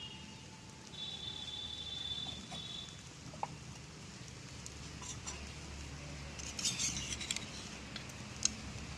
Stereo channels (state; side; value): identical; both; correlation 1.00